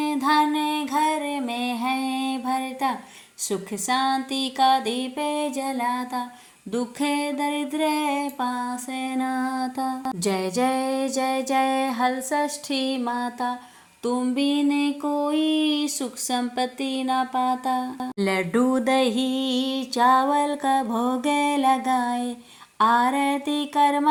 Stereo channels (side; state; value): both; identical; correlation 1.00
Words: धन घर में है भरता। सुख शांति का दीप जलाता, दुख दरिद्र पास नाता। जय जय जय जय हल षष्ठी माता, तुम बिन कोई सुख संपत्ति न पाता। लड्डू दही चावल का भोग लगाए, आरती कर